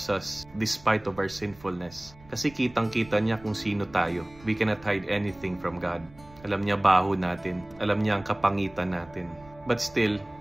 us despite of our sinfulness. Kasi kitang-kita niya kung sino tayo. We cannot hide anything from God. Alam niya baho natin. Alam niya ang kapangitan natin. But still,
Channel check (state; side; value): noise; right; rumble, 23 dB below the sound